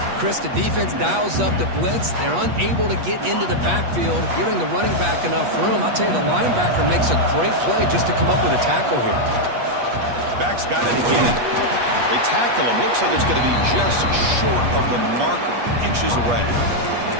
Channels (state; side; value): late; left; 8.4 ms